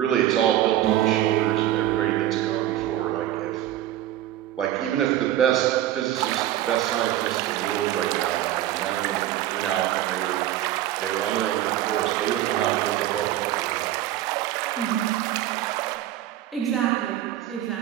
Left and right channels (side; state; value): left; quieter; 13.1 dB